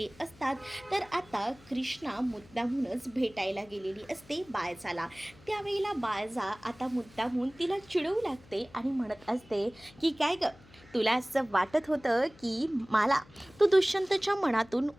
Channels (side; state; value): left; noise; hum, 25 dB below the sound